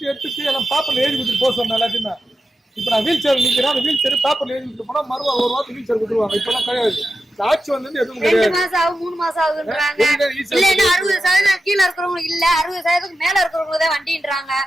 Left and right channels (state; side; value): normal; both; correlation 0.91